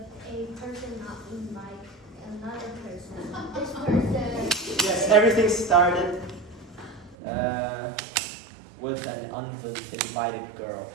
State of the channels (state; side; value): drops out; left; at 7.2 s